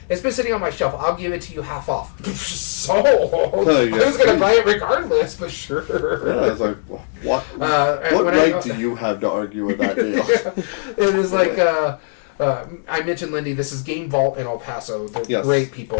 it's been sitting on my shelf. I'll give it to you half off. Sold. I was going to buy it regardless, but sure. Yeah, I was like, what right do you have to argue with that deal? It was like... I mentioned Lindy. This is Game Vault in El Paso. They're great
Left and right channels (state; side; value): silent; right; 65 dB below the other